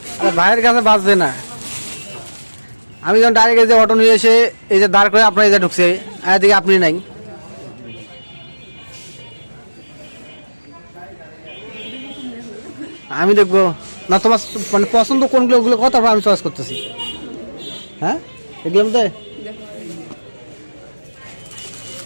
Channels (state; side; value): inverted; both; correlation -1.00